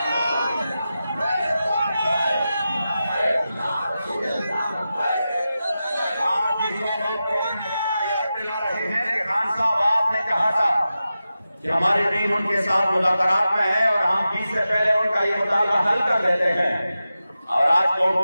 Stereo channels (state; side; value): inverted; both; correlation -0.92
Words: कि हमारी टीम उनके साथ मुज़ाकरात में है और हम 20 से पहले उनका ये मुतालबा हल कर देते हैं, और आज कोर्ट